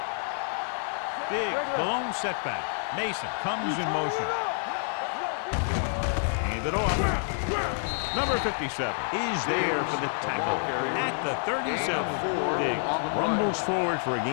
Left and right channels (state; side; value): silent; right; 59 dB below the other